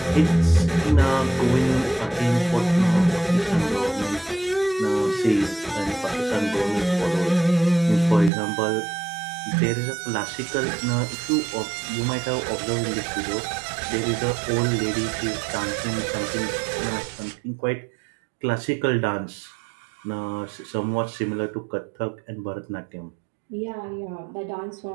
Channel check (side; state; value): left; drops out; at 8.3 s